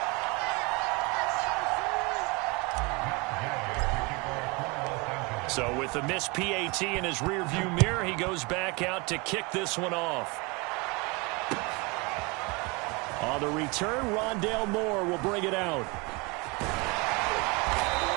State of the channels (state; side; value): quieter; left; 27.8 dB